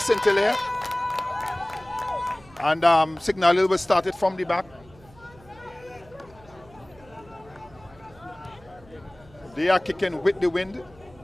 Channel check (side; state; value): right; noise; hum, 25 dB below the sound